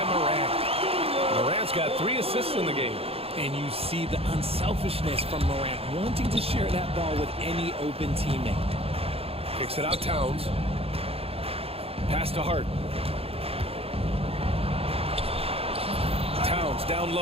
Moran. Moran's got 3 assists in the game. And you see the unselfishness from Morant, wanting to share that ball with any open teammate. Kicks it out, Towns. Pass to Hart. Towns down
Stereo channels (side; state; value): left; late; 0.28 ms